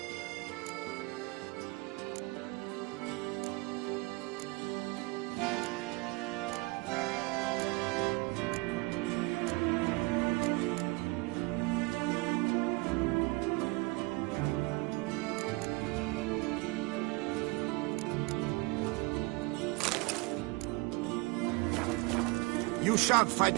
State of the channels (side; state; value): left; quieter; 25.5 dB